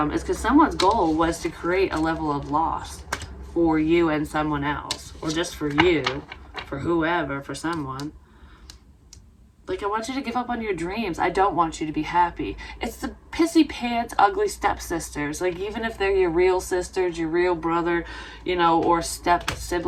because someone's goal was to create a level of loss for you and someone else. Or just for you, for whoever, for someone. Like, I want you to give up on your dreams. I don't want you to be happy. It's the pissy pants, ugly stepsisters. Like, even if they're your real sisters, your real brother, or step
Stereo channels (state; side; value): identical; both; correlation 1.00